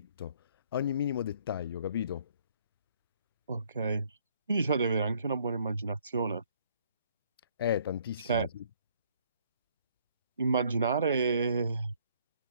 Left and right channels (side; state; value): both; inverted; correlation -0.64